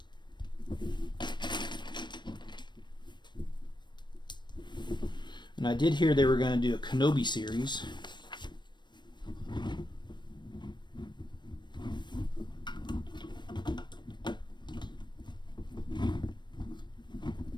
And I did hear they were going to do a Kenobi series.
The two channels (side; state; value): right; late; 0.22 ms